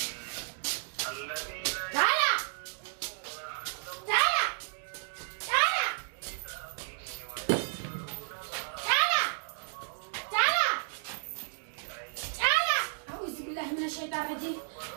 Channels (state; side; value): silent; left; digital silence